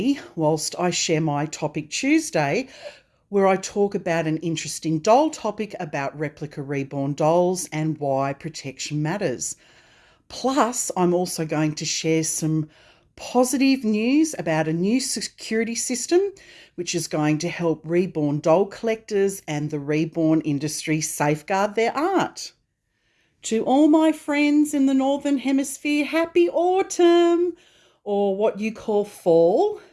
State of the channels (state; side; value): identical; both; correlation 1.00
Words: whilst I share my Topic Tuesday, where I talk about an interesting doll topic about replica reborn dolls and why protection matters. Plus, I'm also going to share some positive news about a new security system which is going to help reborn doll collectors and the reborn industry safeguard their art. To all my friends in the Northern Hemisphere, happy autumn, or what you call fall.